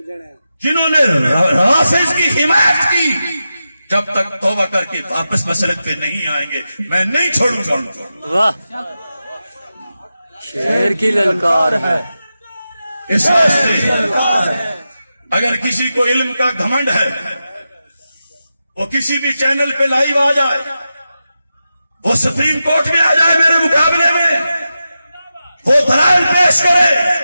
جنہوں نے رافض کی حمایت کی, جب تک توبہ کر کے واپس مسلک پہ نہیں آئیں گے میں نہیں چھوڑوں گا. واہ, شیر کی للکار ہے. اس واسطے اگر کسی کو علم کا گھمنڈ ہے وہ کسی بھی چینل پہ لائیو آ جائے, وہ سپریم کورٹ میں آ جائے میرے مقابلے میں, وہ دلائل پیش کرے.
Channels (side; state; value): both; inverted; correlation -0.91